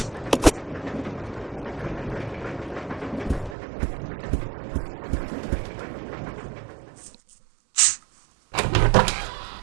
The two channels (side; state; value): left; drops out; at 3.6 s